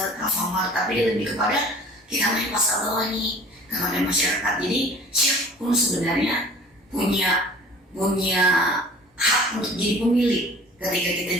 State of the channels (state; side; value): normal; both; correlation 0.47